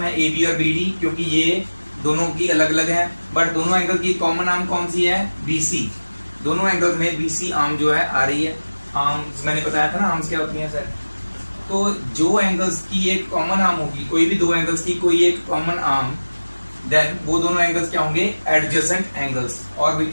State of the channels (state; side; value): inverted; both; correlation -1.00